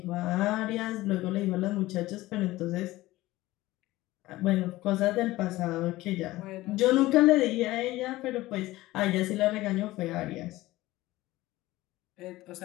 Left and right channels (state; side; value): quieter; right; 17.8 dB